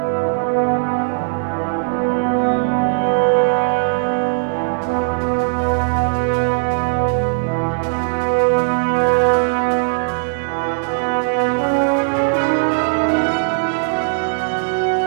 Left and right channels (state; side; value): silent; left; digital silence